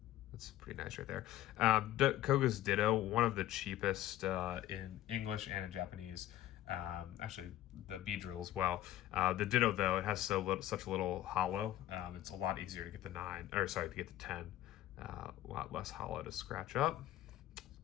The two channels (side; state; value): right; quieter; 13.7 dB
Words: That's pretty nice right there. Koga's Ditto, one of the cheapest in English and in Japanese. Actually, the Beedrill as well. The Ditto, though, it has such a little hollow. It's a lot easier to get the 9, or sorry, to get the 10. A lot less hollow to scratch up.